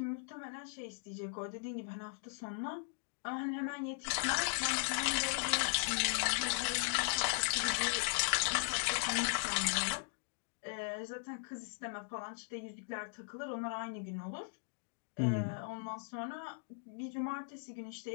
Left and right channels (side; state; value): right; silent; digital silence